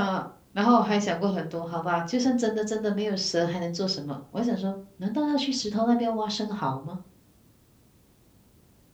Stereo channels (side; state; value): both; identical; correlation 1.00